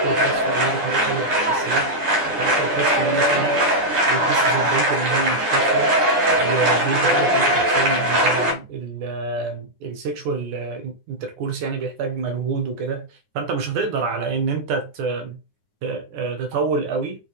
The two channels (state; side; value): late; left; 9.7 ms